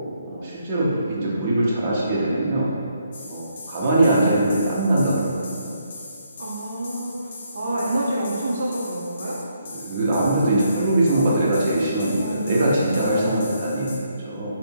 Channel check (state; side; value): inverted; both; correlation -0.75